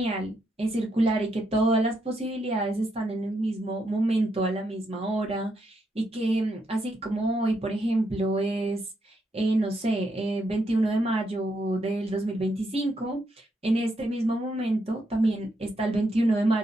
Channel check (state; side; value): normal; both; correlation 0.79